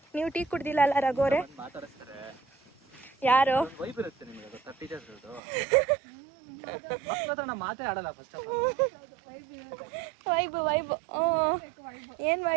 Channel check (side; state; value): left; drops out; at 5.4 s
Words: ನೀವು ಟೀ ಕುಡ್ದಿಲ್ಲ ಅಲ್ಲ ರಘುವರೇ? ಮಾತಾಡಿಸ್ತಾರೆ ಯಾರು? ವೈಬ್ ಇರುತ್ತೆ ನಿಮಗೆ, ಅದು 30 ಡೇಸ್ದು ಮಕ್ಕಳ ಹತ್ರ ಮಾತೇ ಆಡಲ್ಲ. ಫಸ್ಟ್ ಆಫ್ ವೈಬ್ ಏನು